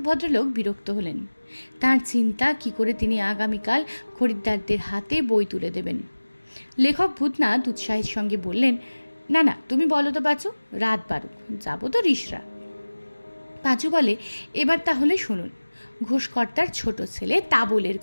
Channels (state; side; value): inverted; both; correlation -1.00